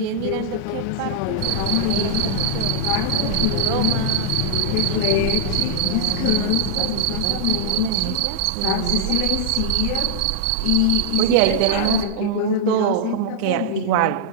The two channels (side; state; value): both; different; correlation -0.01